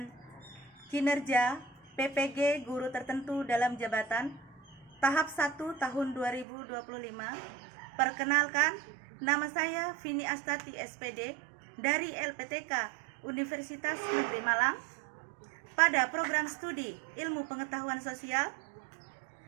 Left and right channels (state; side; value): drops out; left; at 6.5 s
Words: kinerja PPG guru tertentu dalam jabatan tahap 1 tahun 2025. Perkenalkan, nama saya Vini Astati SPD dari LPTK Universitas Negeri Malang pada program studi Ilmu Pengetahuan Sosial